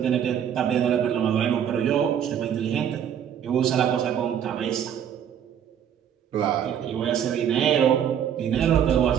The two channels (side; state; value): left; quieter; 9.0 dB